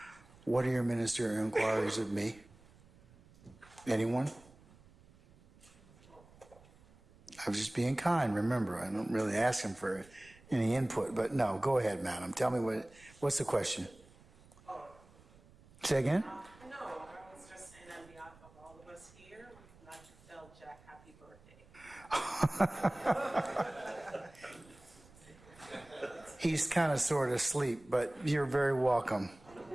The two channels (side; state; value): right; noise; rumble, 25 dB below the sound